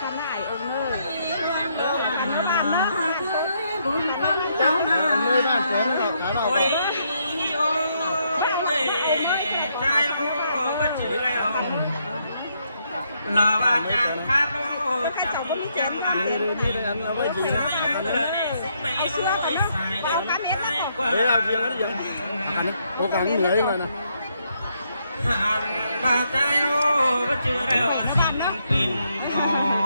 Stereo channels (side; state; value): both; inverted; correlation -0.75